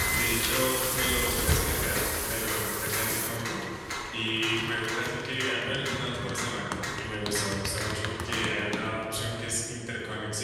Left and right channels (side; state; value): both; identical; correlation 1.00